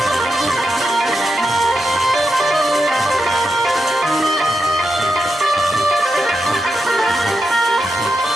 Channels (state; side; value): normal; both; correlation 0.87